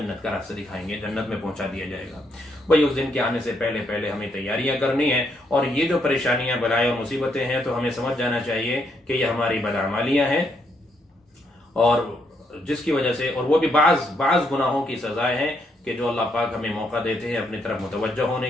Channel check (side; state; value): both; normal; correlation 0.75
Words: کا راستہ دکھائیں گے، جنت میں پہنچا دیا جائے گا. بھائی اس دن کے آنے سے پہلے ہمیں تیاریاں کرنی ہیں. اور یہ جو پریشانیاں، بلائیں اور مصیبتیں ہیں، تو ہمیں سمجھ جانا چاہیے کہ یہ ہماری بدعمالیاں ہیں، اور جس کی وجہ سے، اور وہ بھی بعض گناہوں کی سزائیں ہیں کہ جو اللہ پاک ہمیں موقع دیتے ہیں اپنی طرف متوجہ ہونے